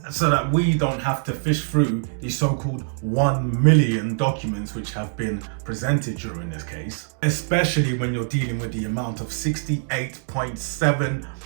so that we don't have to fish through the so-called 1 million documents which have been presented during this case, especially when you're dealing with the amount of $68.7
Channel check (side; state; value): left; silent; digital silence